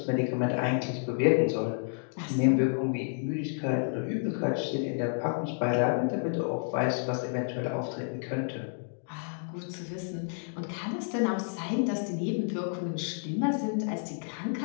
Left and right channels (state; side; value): silent; right; 58 dB below the other